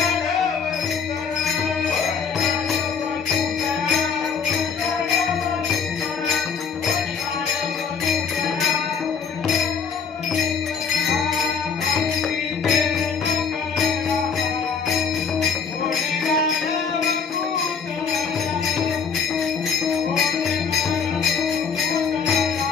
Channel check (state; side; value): quieter; right; 5.9 dB